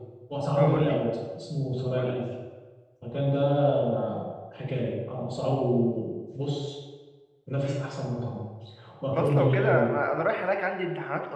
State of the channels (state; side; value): identical; both; correlation 1.00